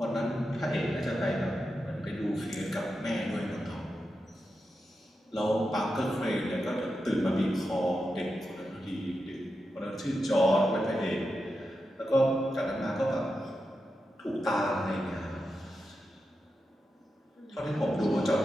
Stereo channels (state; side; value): normal; both; correlation 0.89